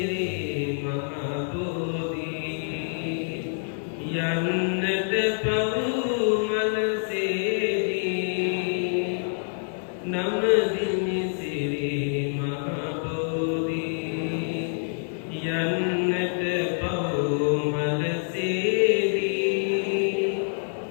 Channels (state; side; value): silent; right; digital silence